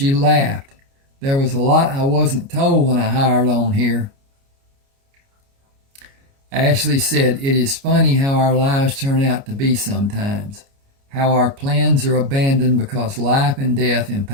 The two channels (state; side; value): late; left; 29 ms